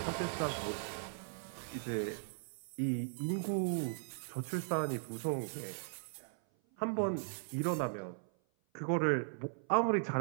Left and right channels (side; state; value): left; silent; 52 dB below the other